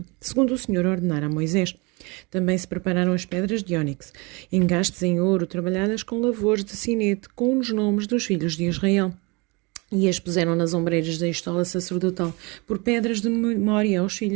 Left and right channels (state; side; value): quieter; left; 27.9 dB